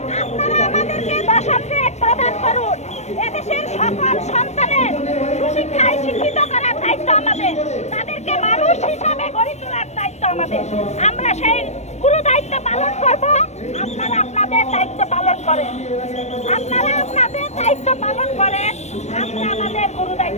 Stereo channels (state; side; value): late; right; 0.32 ms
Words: আপনারা আমাদেরকে দশম গ্রেড প্রদান করুন, এদেশের সকল সন্তানের সুশিক্ষায় শিক্ষিত করার দায়িত্ব আমাদের, তাদেরকে মানুষ হিসাবে গড়ে তোলার দায়িত্ব আমাদের। আমরা সেই গুরু দায়িত্ব পালন করব। আপনারা আপনাদের দায়িত্ব পালন করেন, আপনারা আপনাদের দায়িত্ব পালন করেন, আমরা আমাদের গুরু